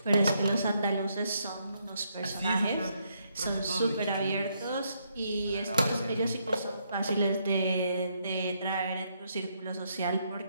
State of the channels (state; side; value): inverted; both; correlation -0.75